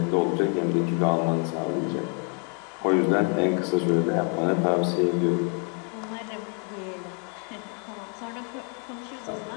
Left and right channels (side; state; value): right; quieter; 38.8 dB